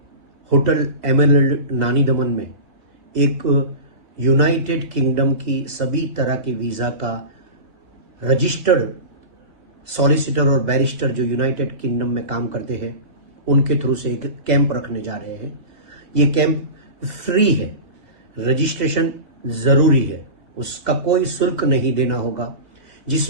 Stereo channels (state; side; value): late; left; 2.0 ms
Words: होटल एमरल्ड नानी दमन में एक यूनाइटेड किंगडम की सभी तरह के वीज़ा का रजिस्टर्ड सॉलिसिटर और बैरिस्टर जो यूनाइटेड किंगडम में काम करते हैं उनके थ्रू से एक कैंप रखने जा रहे हैं। ये कैंप फ्री है, रजिस्ट्रेशन ज़रूरी है, उसका कोई शुल्क नहीं देना होगा,